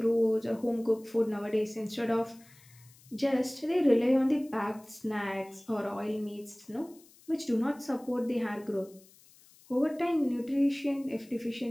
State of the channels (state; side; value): noise; left; hiss, 26 dB below the sound